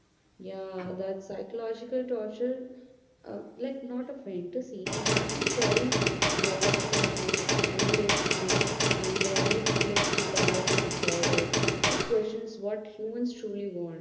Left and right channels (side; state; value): both; identical; correlation 1.00